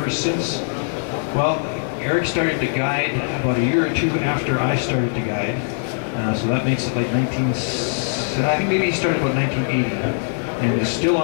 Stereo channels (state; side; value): silent; right; digital silence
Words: since, well, Eric started to guide about a year or two after I started to guide. So that makes it like I think maybe he started about 1980, and is still